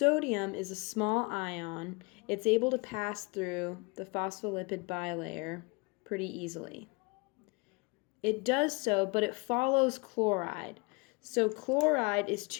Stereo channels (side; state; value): right; quieter; 29.3 dB